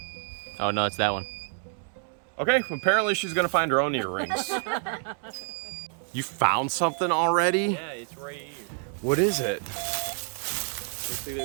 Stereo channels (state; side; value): silent; left; 59 dB below the other